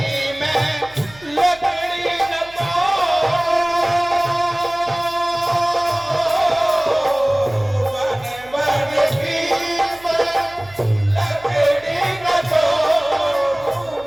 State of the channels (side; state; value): right; noise; hum, 24 dB below the sound